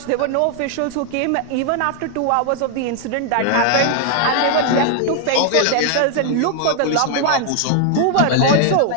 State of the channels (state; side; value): different; both; correlation 0.00